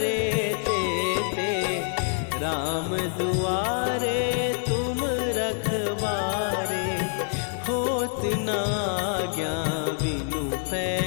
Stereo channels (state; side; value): silent; right; 61 dB below the other